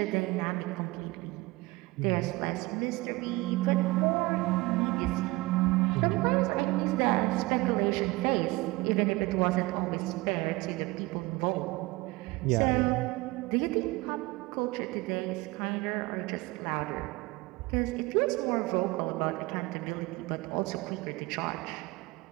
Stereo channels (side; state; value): left; quieter; 22.2 dB